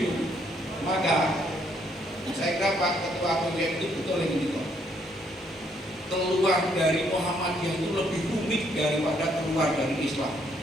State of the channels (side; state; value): both; normal; correlation 0.70